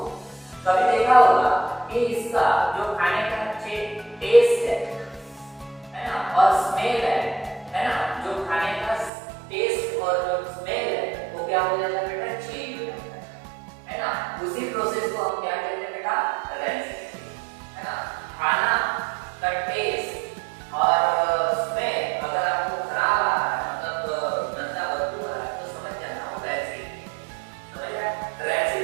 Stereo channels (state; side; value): drops out; left; at 9.1 s